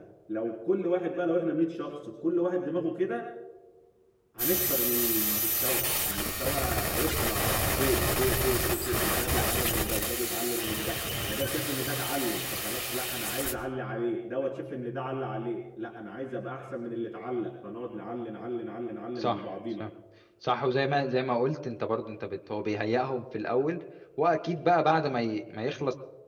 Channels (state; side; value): identical; both; correlation 1.00